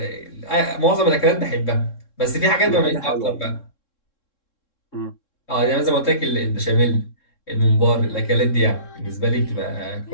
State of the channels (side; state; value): right; late; 3.7 ms